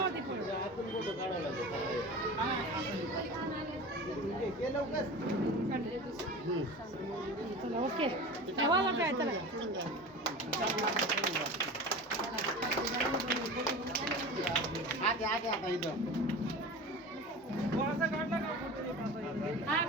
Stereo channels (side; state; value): both; normal; correlation 0.33